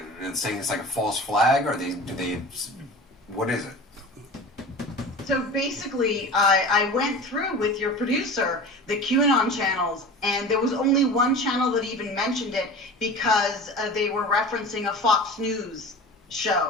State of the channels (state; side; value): normal; both; correlation 0.36